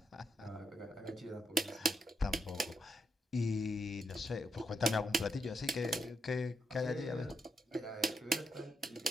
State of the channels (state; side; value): normal; both; correlation 0.82